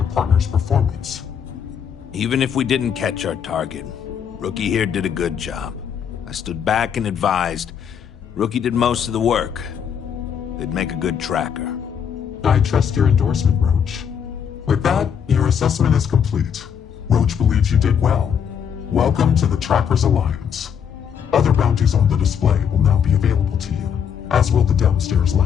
partner's performance? Even if we didn't catch our target, Rookie here did a good job. I stood back and advised. Rookie did most of the work. They'd make a good tracker. I trust your endorsement, Roach. With that, your assessment is complete. Roach believes you did well. Welcome to the Trackers Alliance. Other bounties on the display will now be available to you, as will the downstairs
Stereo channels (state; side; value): quieter; right; 7.8 dB